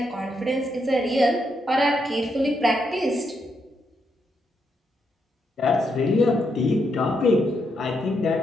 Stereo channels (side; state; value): both; normal; correlation 0.79